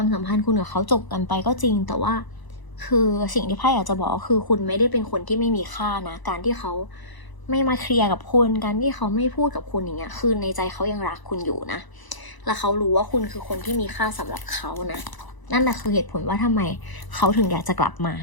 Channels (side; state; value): right; late; 1.0 ms